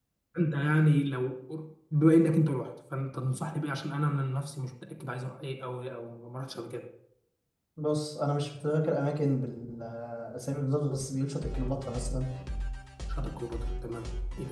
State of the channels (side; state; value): both; identical; correlation 1.00